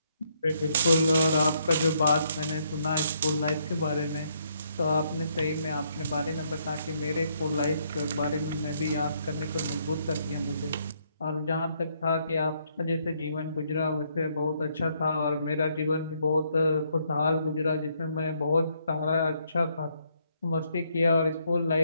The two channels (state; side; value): inverted; both; correlation -0.72